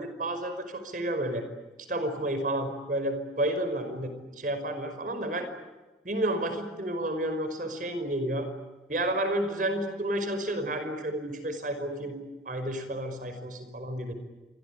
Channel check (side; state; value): both; normal; correlation 0.31